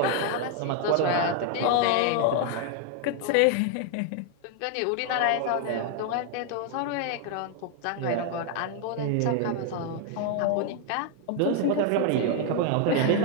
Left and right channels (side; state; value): both; different; correlation 0.00